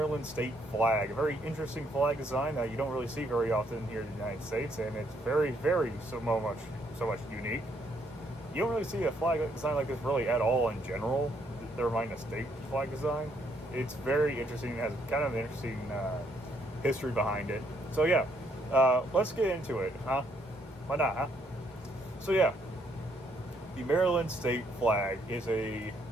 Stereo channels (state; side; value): normal; both; correlation 0.71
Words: state flag, a very interesting flag design that you don't really see very often here in the United States, and it's very, so much unique. You don't really see a flag design like this really at all in general, never mind a state flag design. It's very interesting, it has kind of an interesting history behind it. So yeah, let's get into it, huh? Why not, huh? So yeah, the Maryland state flag is a